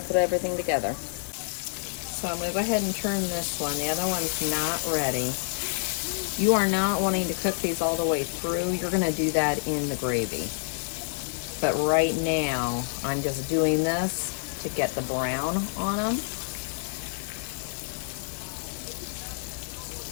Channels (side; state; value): right; silent; digital silence